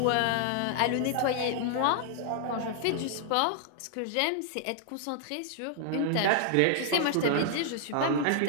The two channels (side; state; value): both; different; correlation -0.01